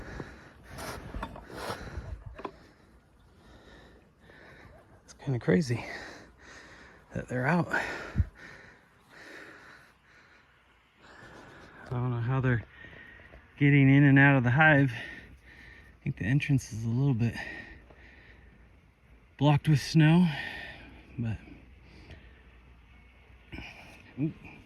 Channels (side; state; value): both; identical; correlation 1.00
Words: Kind of crazy that they're out. I don't know how they're getting in and out of the hive. I think the entrance is a little bit blocked with snow, but ooh,